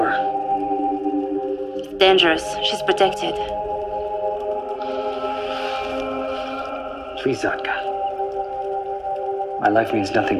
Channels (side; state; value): both; identical; correlation 1.00